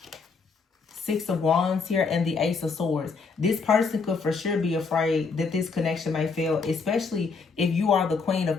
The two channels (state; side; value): quieter; right; 4.8 dB